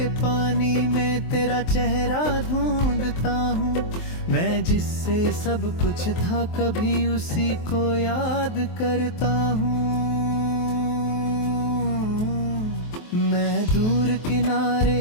पानी में तेरा चेहरा ढूंढता हूँ। मैं जिससे सब कुछ था कभी उसी को याद करता हूँ। मैं दूर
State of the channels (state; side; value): late; right; 23 ms